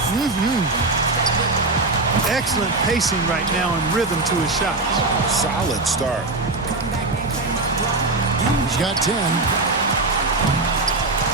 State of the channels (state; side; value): quieter; left; 3.2 dB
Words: Excellent pacing right now and rhythm to his shots. Solid start. He's got 10.